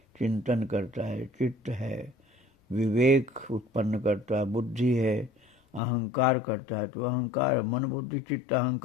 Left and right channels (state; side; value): drops out; right; at 5.8 s